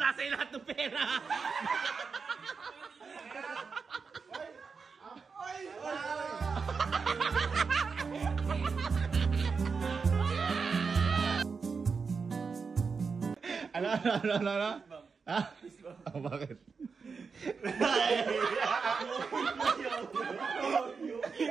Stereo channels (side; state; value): left; quieter; 5.2 dB